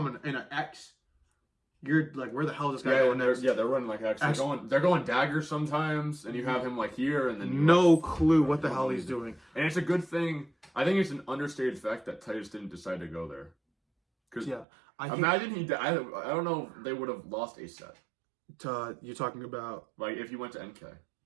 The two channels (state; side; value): drops out; left; at 14.7 s